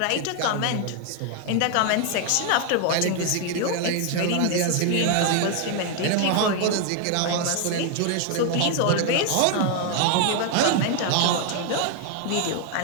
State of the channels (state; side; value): different; both; correlation 0.00